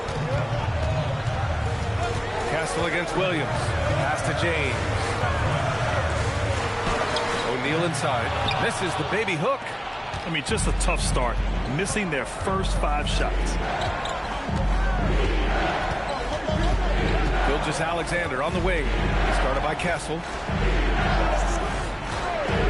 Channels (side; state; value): both; identical; correlation 1.00